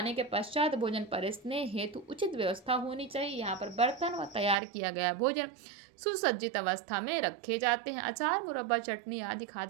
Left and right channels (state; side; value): drops out; left; at 4.5 s